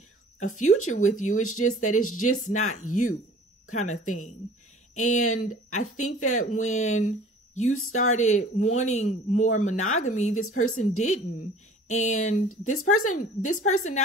a future with you. It's just that it's just not you kind of thing. And I think that when you started wanting more monogamy, this person didn't. And this person,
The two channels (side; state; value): both; normal; correlation 0.47